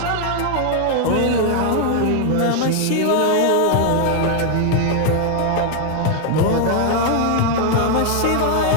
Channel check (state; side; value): different; both; correlation 0.00